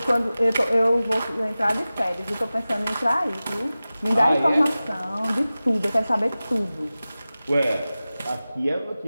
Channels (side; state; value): both; inverted; correlation -0.96